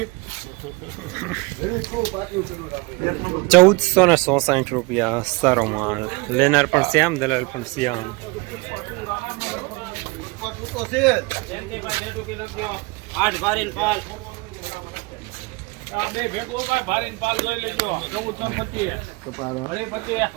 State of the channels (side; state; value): left; quieter; 25.9 dB